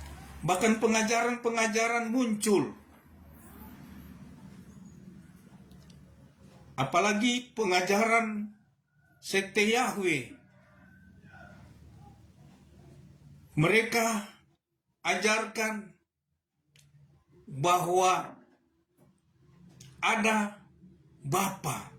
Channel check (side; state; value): both; identical; correlation 1.00